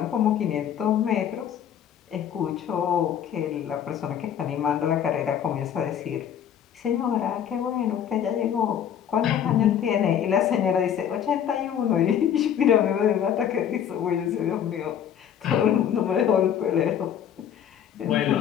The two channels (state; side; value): quieter; right; 9.1 dB